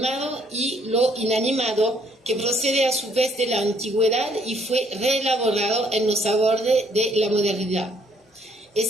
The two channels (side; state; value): both; normal; correlation 0.66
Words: y lo inanimado que procede a su vez de la antigüedad y fue reelaborado en los abordes de la modernidad.